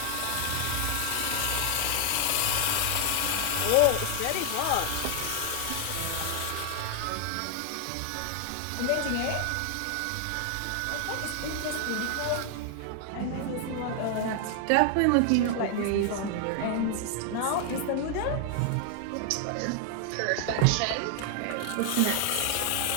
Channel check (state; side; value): different; both; correlation 0.00